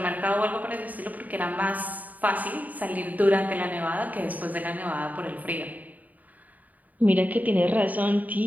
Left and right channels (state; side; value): late; left; 0.077 ms